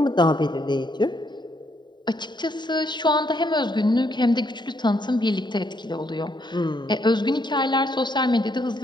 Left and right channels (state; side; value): late; right; 0.22 ms